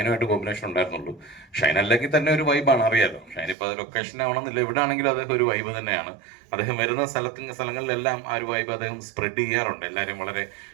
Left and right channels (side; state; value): left; drops out; at 3.6 s